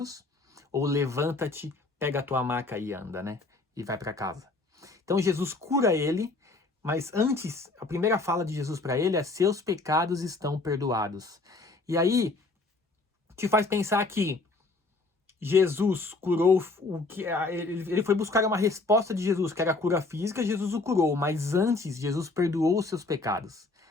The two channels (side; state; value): right; quieter; 3.4 dB